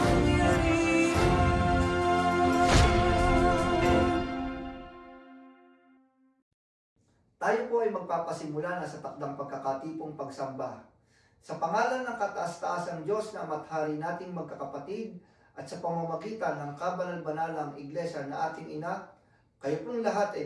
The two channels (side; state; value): both; identical; correlation 1.00